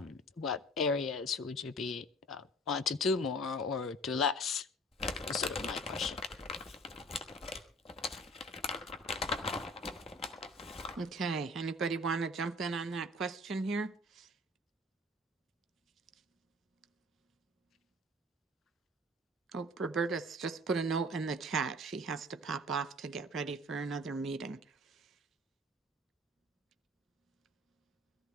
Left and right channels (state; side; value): normal; both; correlation 0.47